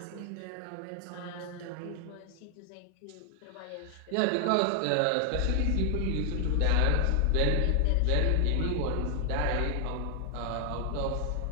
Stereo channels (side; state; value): both; different; correlation 0.00